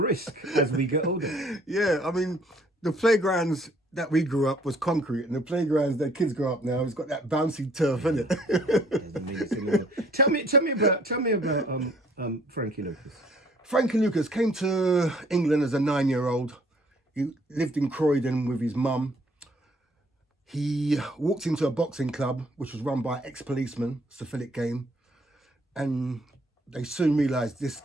as we get older. Yeah, I mean, the playgrounds that we grew up was concrete, and the playgrounds that kids grow up now, it's got that bouncy turf in it. Tell me about Frankie Lucas. Frankie Lucas came to England as a 9-year-old. He lived in Croydon with his mum. He walked into a boxing club, which was run by ex-policemen, syphilitic game, and they soon realised this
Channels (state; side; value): normal; both; correlation 0.60